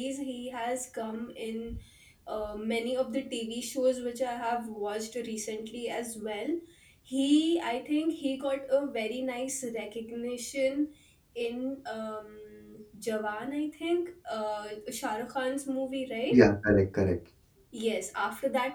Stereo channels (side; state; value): both; identical; correlation 1.00